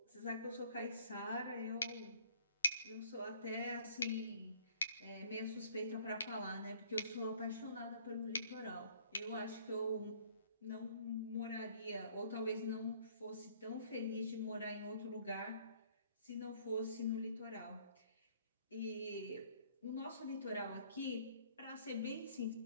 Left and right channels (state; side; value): inverted; both; correlation -0.58